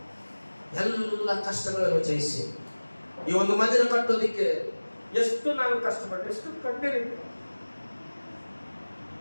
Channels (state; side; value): inverted; both; correlation -1.00